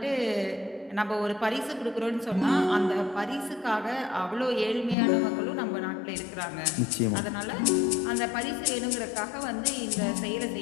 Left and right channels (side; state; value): right; drops out; at 5.0 s